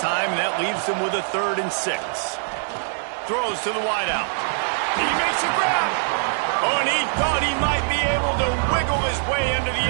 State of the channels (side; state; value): left; silent; digital silence